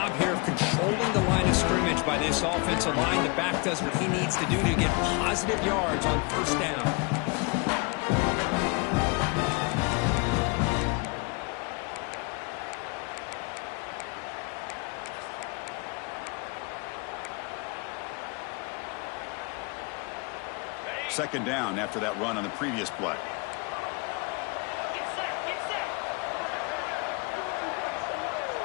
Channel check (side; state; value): right; quieter; 30.1 dB